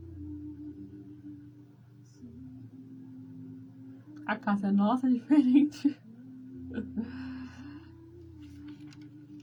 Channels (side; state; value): both; identical; correlation 1.00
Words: A casa nossa é diferente.